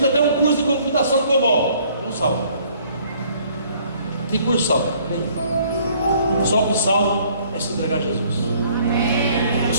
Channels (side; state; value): both; inverted; correlation -0.59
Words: até um curso de computação COBOL, não salva. Que curso salva? Só o que salva é se entregar a Jesus. Eu